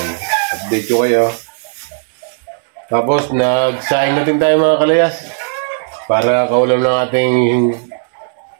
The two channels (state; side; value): silent; left; digital silence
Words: Update ko kayo. Tapos nagsaing natin tayo mga kalayas para kaulam ng ating